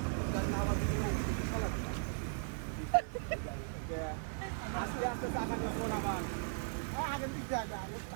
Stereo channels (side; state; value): left; silent; 53 dB below the other